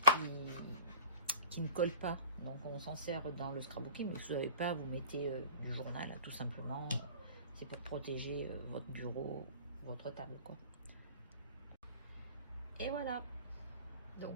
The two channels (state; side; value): inverted; both; correlation -0.40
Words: qui ne colle pas. Donc, on s'en sert dans le scrapbooking. Mais si vous n'avez pas, vous mettez du journal, là, tout simplement. C'est pour protéger votre bureau, votre table, quoi. Et voilà.